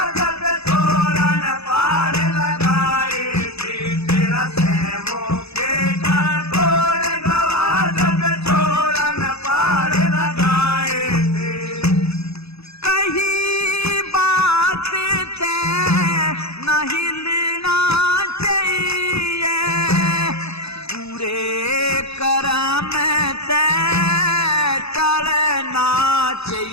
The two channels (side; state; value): right; late; 0.79 ms